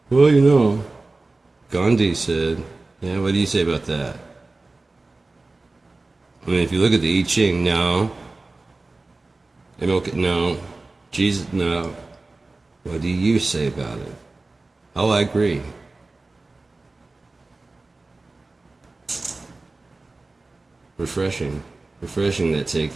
Well, you know, Gandhi said, yeah, what do you say about that? I mean, if you look at the I Ching, no. MLK, no. Jesus, no. What do you say about it? Oh, I agree. Refreshing that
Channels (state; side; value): quieter; left; 3.3 dB